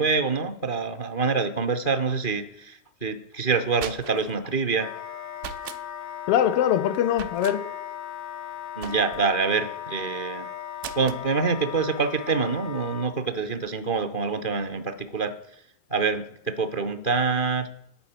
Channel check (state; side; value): late; right; 2.5 ms